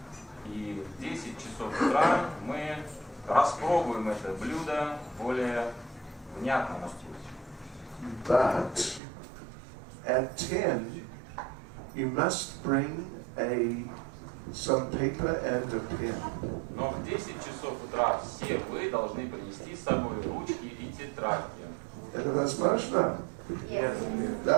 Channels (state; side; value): drops out; left; at 9.0 s